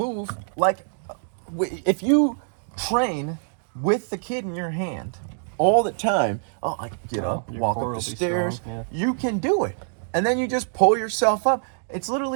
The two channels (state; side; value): silent; left; digital silence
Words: like, if you train with the kid in your hand all the time. Oh, I can get up, walk up the stairs. Strong, You can do it, and then you just pull yourself up. It's